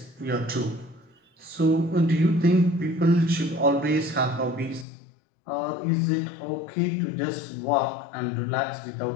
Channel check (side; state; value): right; drops out; at 4.9 s